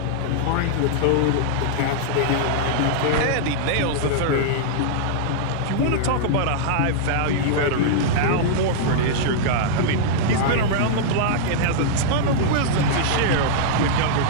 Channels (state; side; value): different; both; correlation -0.01